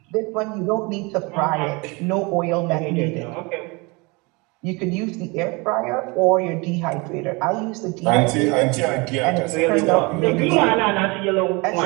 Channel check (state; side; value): quieter; left; 27.2 dB